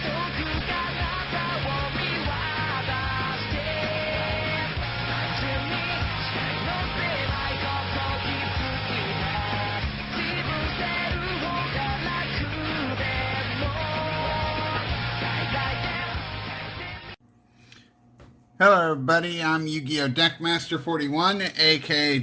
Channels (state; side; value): identical; both; correlation 1.00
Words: Hello everybody, I'm Yu-Gi-Oh! Deckmaster 41, aka